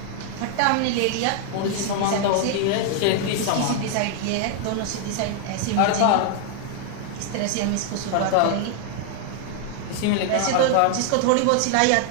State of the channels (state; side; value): different; both; correlation 0.00